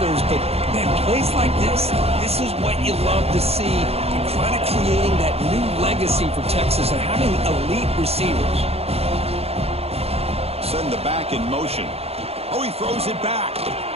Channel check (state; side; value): late; left; 0.29 ms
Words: but, man, plays like this is what you love to see, and kind of creating that new legacy for Texas and having elite receivers. send the back in motion. Oh, he throws it back.